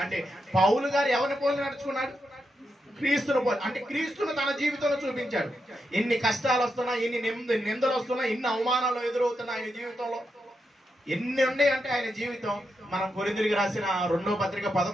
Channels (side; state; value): both; normal; correlation 0.85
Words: అంటే పౌలు గారు ఎవరిని పోలి నడుచుకున్నాడు? క్రీస్తును పోలి. అంటే క్రీస్తును తన జీవితంలో చూపించాడు. ఎన్ని కష్టాలు వస్తున్నా, ఎన్ని నిందలు వస్తున్నా, ఎన్ని అవమానాలు ఎదురవుతున్నా ఆయన జీవితంలో ఎన్ని ఉన్నాయి అంటే ఆయన జీవితం. మనం కొరింథీయులకు రాసిన 2వ పత్రిక